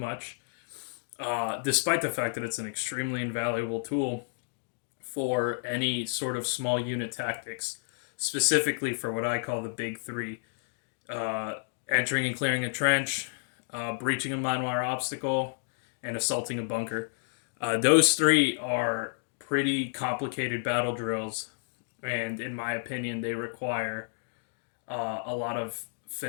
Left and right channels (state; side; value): silent; right; digital silence